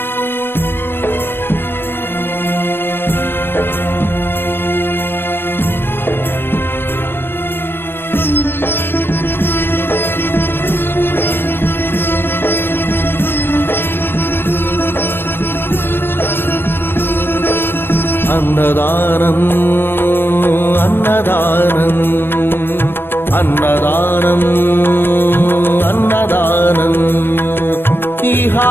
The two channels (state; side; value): late; right; 0.10 ms